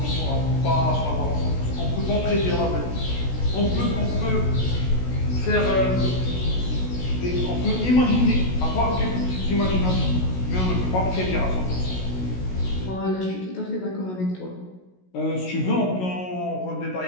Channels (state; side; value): late; right; 16 ms